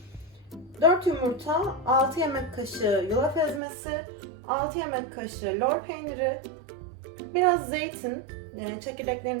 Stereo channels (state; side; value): drops out; left; at 3.6 s